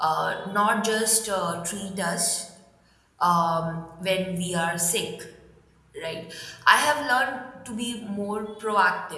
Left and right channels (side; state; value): both; identical; correlation 1.00